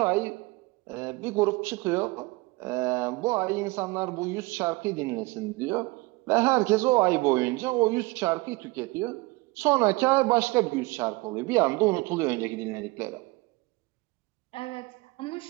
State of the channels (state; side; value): quieter; left; 23.3 dB